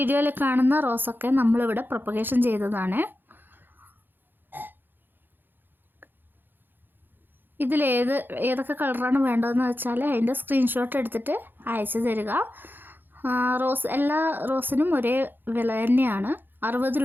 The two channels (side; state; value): left; late; 0.095 ms